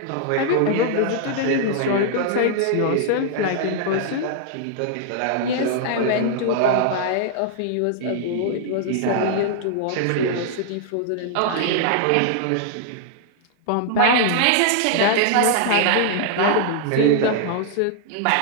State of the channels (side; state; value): both; different; correlation -0.01